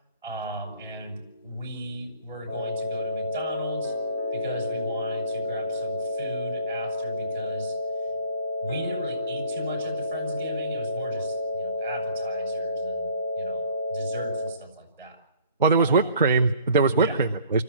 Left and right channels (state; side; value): inverted; both; correlation -0.55